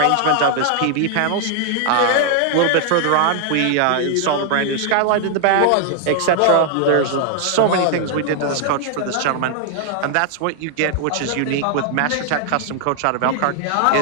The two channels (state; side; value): different; both; correlation 0.00